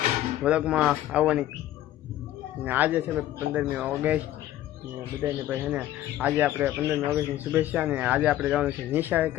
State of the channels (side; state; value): right; quieter; 13.5 dB